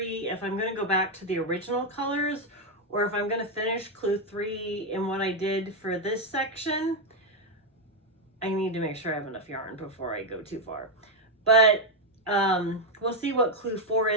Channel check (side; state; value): both; normal; correlation 0.02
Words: if I'm going to go back to the original colors or if I'm going to finish clue 3 in what I did for this section. I need to make sure I have enough yarn before I go too far. But we'll see what clue 4